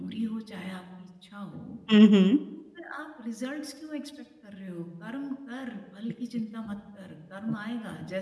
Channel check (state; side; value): identical; both; correlation 1.00